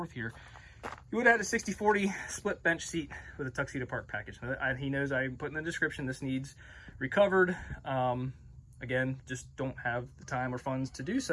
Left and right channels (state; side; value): identical; both; correlation 1.00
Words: here. You would have had a 60/40 split bench seat with a Tuxedo Park package. He knows I put in the description, this needs recovered. Again, just don't have the time or funds to do